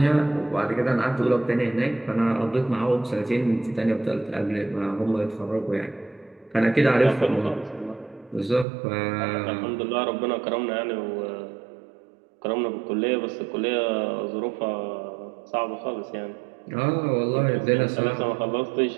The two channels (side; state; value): left; drops out; at 8.7 s